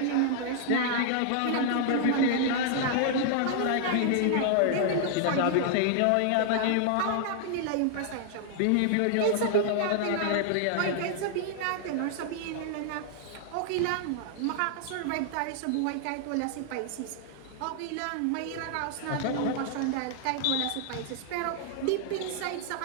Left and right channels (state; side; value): different; both; correlation -0.01